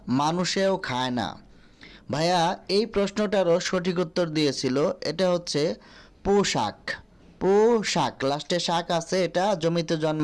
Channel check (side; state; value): both; identical; correlation 1.00